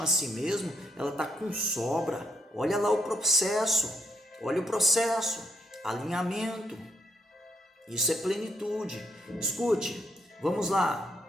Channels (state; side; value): normal; both; correlation 0.75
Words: a si mesmo, ela está com sobra. Olha lá o processo, alinhamento. Isso é plenitude. Escute, vamos lá.